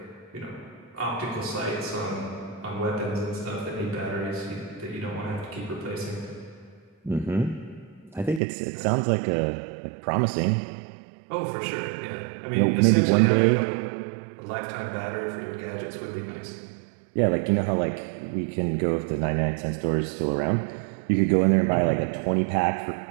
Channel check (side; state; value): left; drops out; at 8.4 s